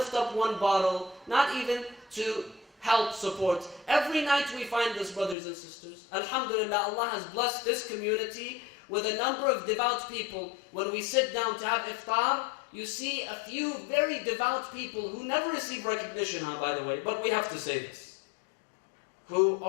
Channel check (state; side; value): drops out; right; at 5.4 s